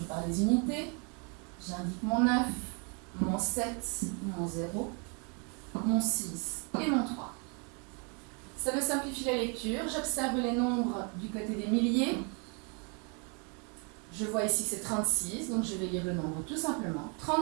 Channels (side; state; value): left; quieter; 35.9 dB